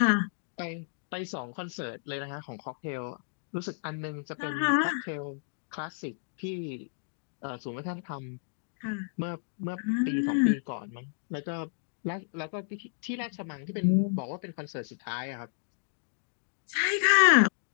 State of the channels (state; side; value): silent; right; digital silence